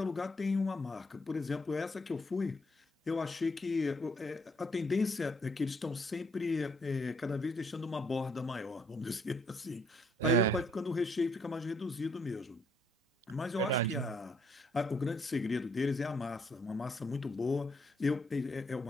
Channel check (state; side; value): normal; both; correlation 0.69